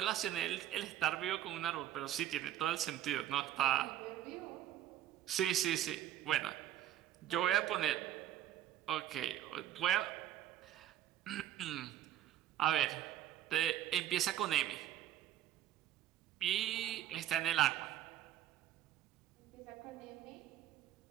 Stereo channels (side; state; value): left; quieter; 12.0 dB